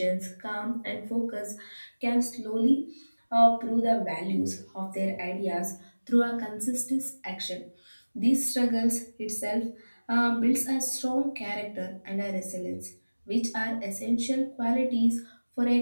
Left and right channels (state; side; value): inverted; both; correlation -1.00